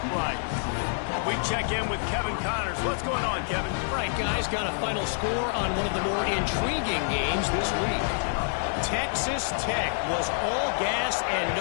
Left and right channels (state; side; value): silent; right; digital silence